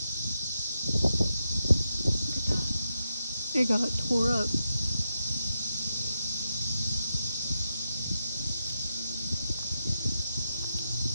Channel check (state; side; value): inverted; both; correlation -0.85